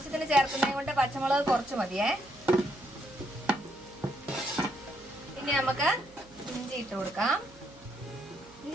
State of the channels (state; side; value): noise; right; hum, 25 dB below the sound